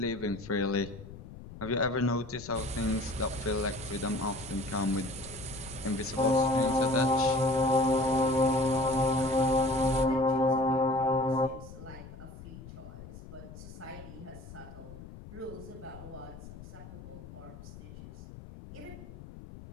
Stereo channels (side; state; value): left; noise; rumble, 15 dB below the sound